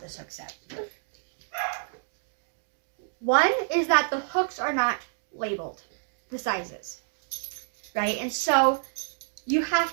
this hook set. One is that the hooks are not labeled, the sizes, right? And so you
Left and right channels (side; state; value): left; silent; digital silence